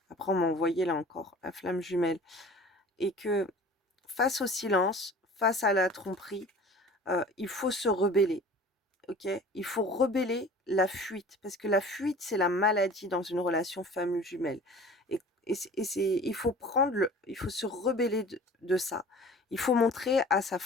Après on m'a envoyé là encore la flamme jumelle et que face au silence, face à la tromperie, il faut se rebeller. OK? Il faut rebeller la fuite, parce que la fuite, c'est la maladie dans une relation femme jumelle et il faut se rebeller de ça. Il faut montrer à sa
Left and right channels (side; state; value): both; normal; correlation 0.44